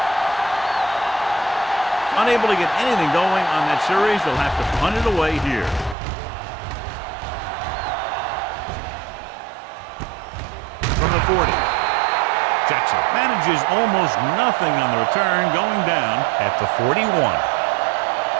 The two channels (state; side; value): drops out; left; at 6.0 s